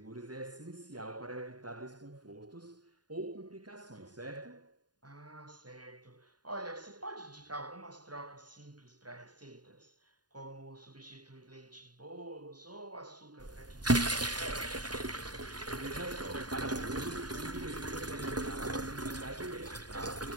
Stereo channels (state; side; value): late; left; 0.70 ms